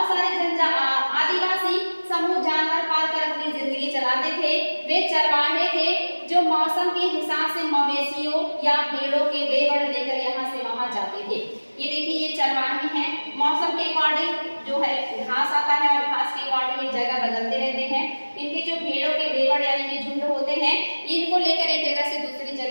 सारे आदिवासी समूह जानवर पालकर अपनी जिंदगी चलाते थे। वे चरवाहे थे जो मौसम के हिसाब से मवेशियों या भेड़ों के लेवड़ लेकर यहाँ से वहां जाते थे। ये देखिए ये चरवाहे हैं, मौसम के अकॉर्डिंग जो है घास आता है और घास के अकॉर्डिंग ये जगह बदलते रहते हैं। इनके जो भेड़ों के लेवड़ यानी कि झुंड होते हैं, इनको लेकर एक जगह से दूसरी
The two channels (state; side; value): inverted; both; correlation -1.00